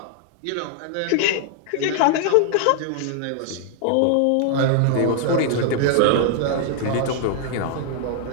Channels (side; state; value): both; different; correlation 0.00